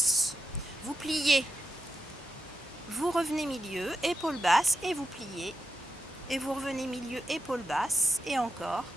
vous pliez, vous revenez milieu, épaules basses, et vous pliez, et vous revenez milieu, épaules basses, et encore.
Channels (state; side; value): normal; both; correlation 0.87